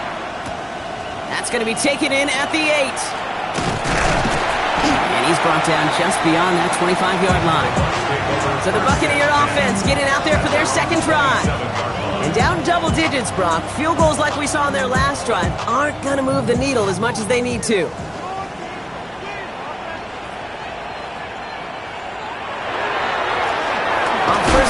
That's going to be taken in at the 8. And he's brought down just beyond that 25-yard line. So the Buccaneer offense getting out there for their second drive. And down double digits, Brock. Field goals like we saw in their last drive aren't going to move the needle as much as they need to. On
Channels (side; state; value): both; identical; correlation 1.00